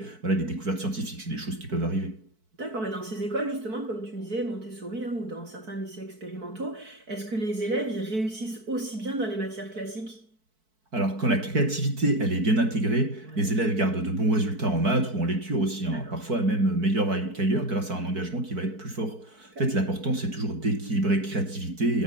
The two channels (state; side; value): late; left; 4.6 ms